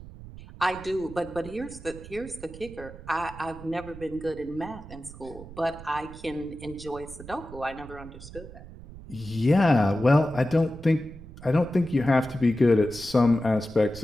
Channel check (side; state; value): right; noise; rumble, 16 dB below the sound